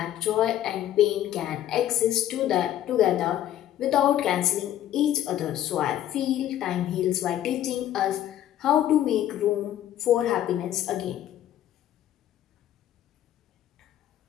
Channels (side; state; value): right; quieter; 12.1 dB